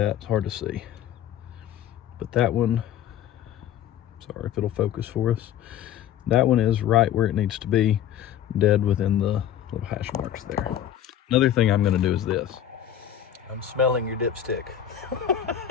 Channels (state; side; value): quieter; right; 10.3 dB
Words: It's hard to see. But that one, sorry if it'll focus for us. That one is right where it needs to be, dead within the little hash marks there. Another thing I'm going to do is this. I'm smelling your dipstick.